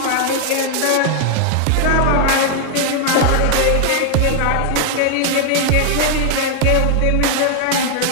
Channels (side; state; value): both; different; correlation 0.00